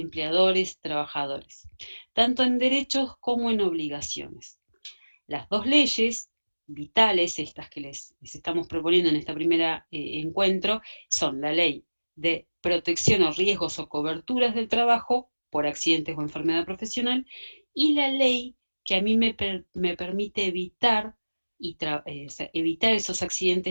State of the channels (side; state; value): both; inverted; correlation -1.00